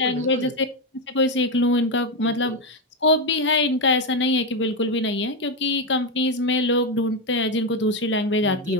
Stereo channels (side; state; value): both; normal; correlation 0.08